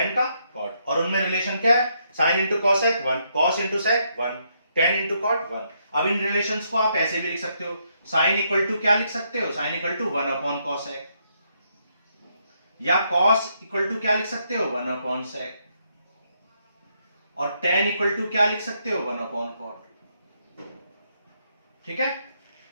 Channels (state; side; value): inverted; both; correlation -0.76